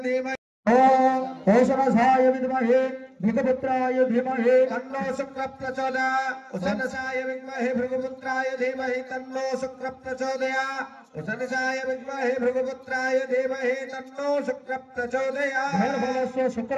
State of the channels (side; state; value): both; identical; correlation 1.00